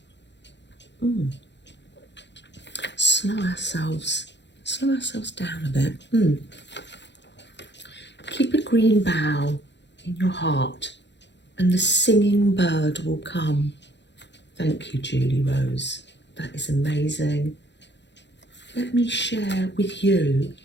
Slow ourselves down a bit. Keep a green bough in your heart, and the singing bird will come. Thank you, Julierose. That is amazing. Let me share with you,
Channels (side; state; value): right; late; 0.52 ms